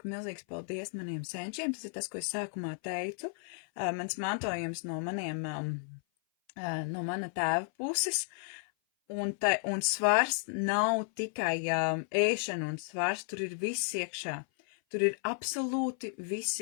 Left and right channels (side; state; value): right; silent; 56 dB below the other